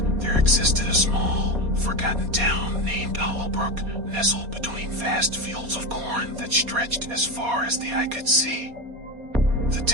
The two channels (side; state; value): left; late; 4.2 ms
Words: there existed a small, forgotten town named Hollowbrook, nestled between vast fields of corn that stretched as far as the eye could see. The